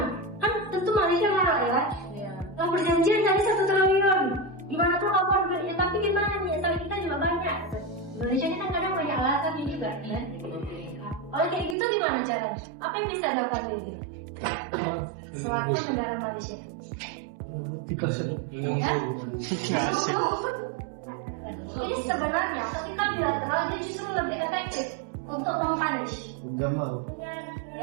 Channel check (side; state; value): left; drops out; at 11.8 s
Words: Kan tentu Malaysia marah ya. Nah, perjanjian tadi 1 triliun. Gimana tuh kapan ya, tapi gimana nih, sawit kita juga banyak. Indonesia ini kan kadang banyak alasannya juga kan. Kalau kayak gitu gimana caranya? Apa yang bisa dilakukan ini? Selaku negara Malaysia. Jadi sebenarnya ketika bilateral dia justru lebih efektif untuk mempunish.